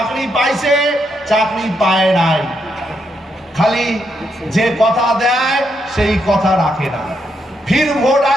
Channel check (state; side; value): normal; both; correlation 0.79